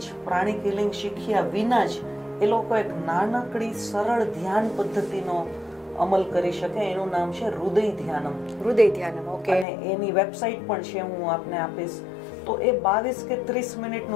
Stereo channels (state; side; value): drops out; right; at 9.7 s